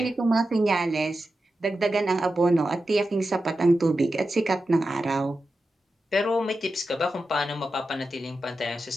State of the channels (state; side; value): normal; both; correlation 0.91